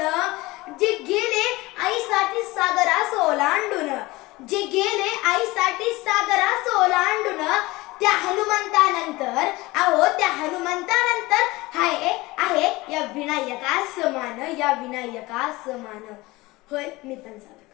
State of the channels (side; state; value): right; quieter; 21.0 dB